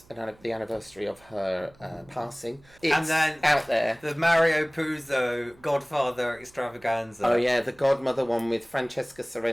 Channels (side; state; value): right; noise; hum, 28 dB below the sound